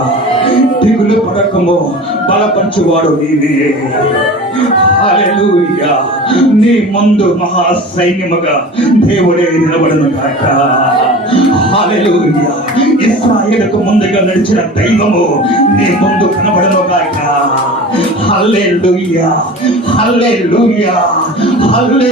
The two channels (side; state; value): both; normal; correlation 0.36